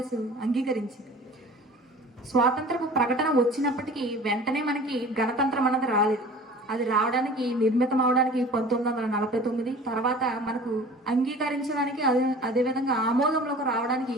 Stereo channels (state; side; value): normal; both; correlation 0.43